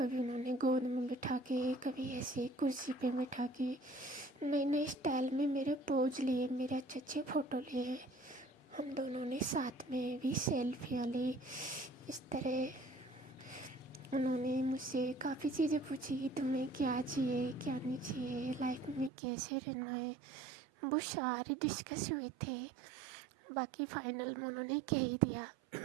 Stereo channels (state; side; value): drops out; left; at 19.1 s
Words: उन्होंने गोद में बिठा के, कभी ऐसे कुर्सी पे बिठा के नए नए स्टाइल में मेरे पोज लिए, मेरे अच्छे अच्छे फ़ोटो लिए, हम दोनों ने साथ में भी सेल्फियाँ ली। इस तरह उन्होंने मुझसे काफ़ी चीज़ें पूछी कि तुम्हें क्या चाहिए क्या नहीं चाहिए, लाइफ में कैसे रहना है, वो सारे डिस्कस हुए थे। बाकी फाइनल में उन्होंने कह ही दिया